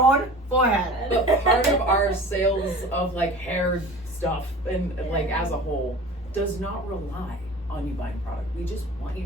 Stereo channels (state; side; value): normal; both; correlation 0.40